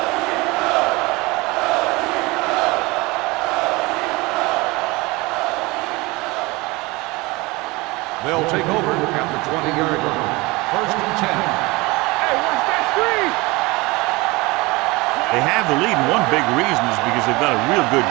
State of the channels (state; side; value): quieter; left; 23.4 dB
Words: They'll take over at the 20-yard line. First and 10. Hey, watch that screen! They have the lead, and one big reason is because they've done a real good